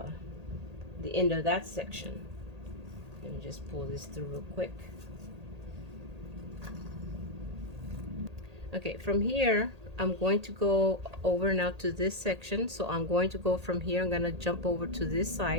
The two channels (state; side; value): late; left; 1.8 ms